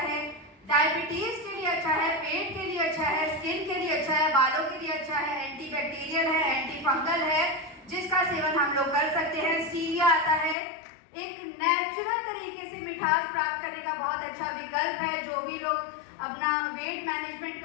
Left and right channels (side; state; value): right; drops out; at 10.6 s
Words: है। डायबिटीज के लिए अच्छा है, पेट के लिए अच्छा है, स्किन के लिए अच्छा है, बालों के लिए अच्छा है, एंटीबैक्टीरियल है, एंटी फंगल है, जिसका सेवन हम लोग कर सकते हैं। स्टीविया आता है, एक नेचुरल तरीके से मिठास प्राप्त करने का बहुत अच्छा विकल्प है। जो भी लोग अपना वेट मैनेजमेंट